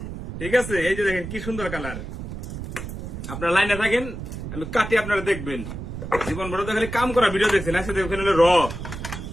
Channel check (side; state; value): right; noise; rumble, 8 dB below the sound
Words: ঠিক আছে? এই যে দেখেন কি সুন্দর কালার। আপনার লাইনে থাকেন, আমি কাটি, আপনারা দেখবেন। জীবন বড় তো খালি কাম করা ভিডিও দেখছেন, একসাথে ওখানে হলো র।